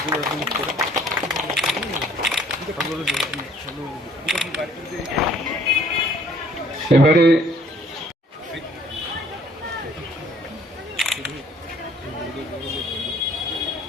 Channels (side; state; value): both; normal; correlation 0.59